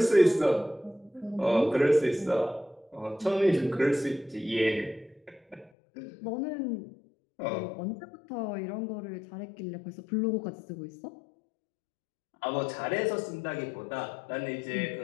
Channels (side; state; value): right; drops out; at 5.7 s